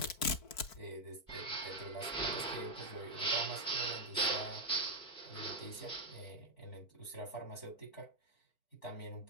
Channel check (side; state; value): right; late; 4.5 ms